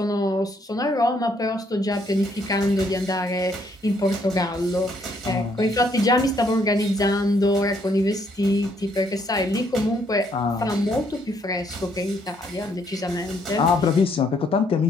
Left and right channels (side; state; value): both; normal; correlation 0.70